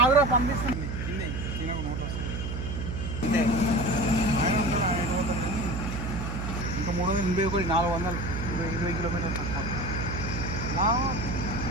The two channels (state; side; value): noise; right; hum, 4 dB below the sound